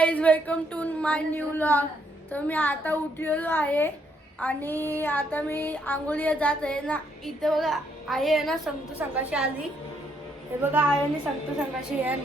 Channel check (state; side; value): normal; both; correlation 0.73